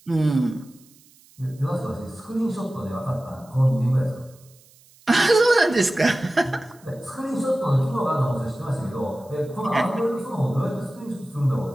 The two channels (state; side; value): noise; right; hiss, 28 dB below the sound